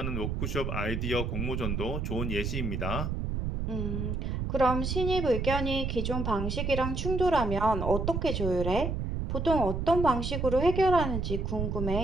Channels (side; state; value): right; noise; rumble, 2 dB below the sound